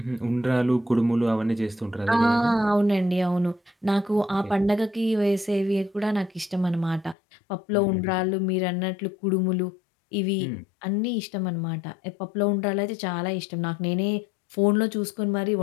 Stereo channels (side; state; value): right; drops out; at 7.2 s